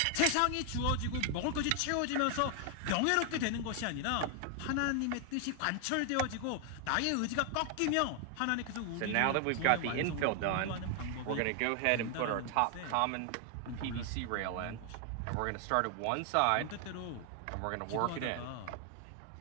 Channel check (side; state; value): both; different; correlation 0.00